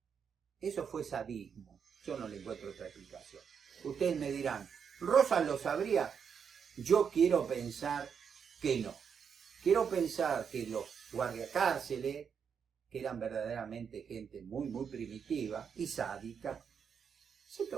Eso fue sadismo. Yo no le encuentro otra explicación. Ustedes me dirán, ¿Rosas lo sabría? Yo quiero pensar que no. Quiero pensar que los guardiacárceles, que eran verdaderamente gente muy, muy primitiva y sádica, se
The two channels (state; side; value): quieter; left; 6.9 dB